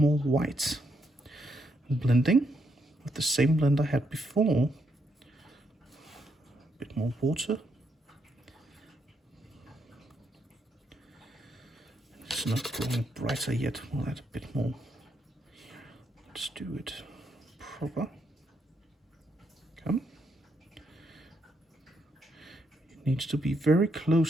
more white. Blending with the same blend I had before. A bit more water. It's not growing brighter yet. We'll add a bit more. Let's do it proper. Come. It needs to be very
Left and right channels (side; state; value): both; normal; correlation 0.77